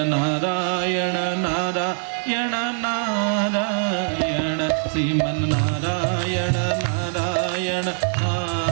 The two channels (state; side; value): silent; left; 61 dB below the other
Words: ନାରାୟଣ ନାରାୟଣ ନାରାୟଣ, ଶ୍ରୀମନ୍ ନାରାୟଣ ନାରାୟଣ